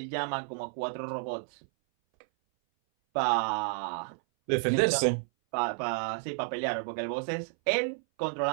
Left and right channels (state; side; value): silent; left; 57 dB below the other